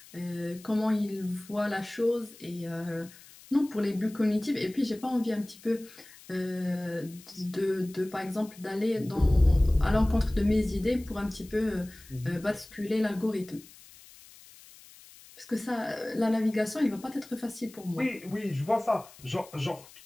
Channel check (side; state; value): left; noise; hiss, 21 dB below the sound